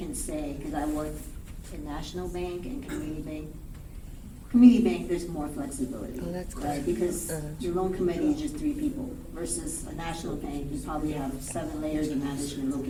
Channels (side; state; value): both; identical; correlation 1.00